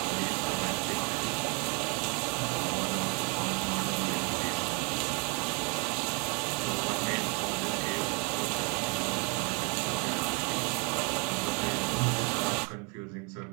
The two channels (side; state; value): left; quieter; 30.2 dB